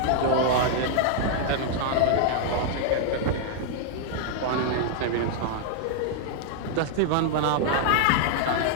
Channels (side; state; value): both; different; correlation -0.01